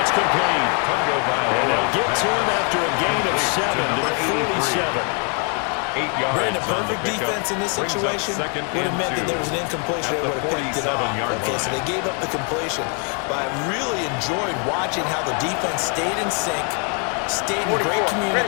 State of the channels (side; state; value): right; quieter; 39.2 dB